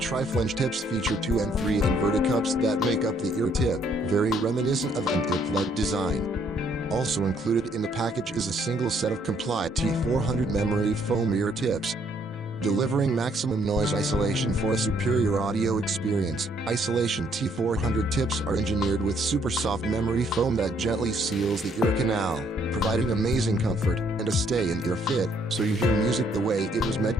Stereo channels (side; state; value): both; normal; correlation 0.67